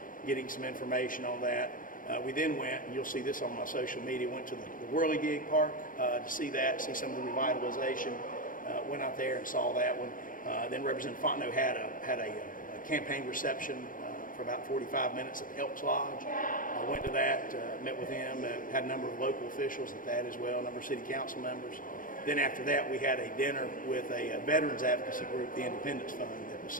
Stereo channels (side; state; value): right; late; 0.40 ms